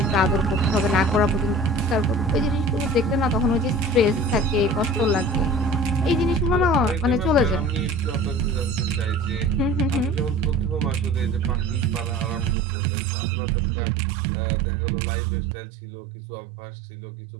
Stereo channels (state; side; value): drops out; left; at 12.6 s